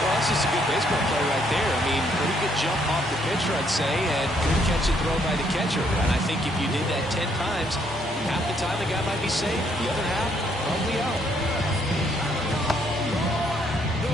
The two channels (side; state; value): both; normal; correlation 0.70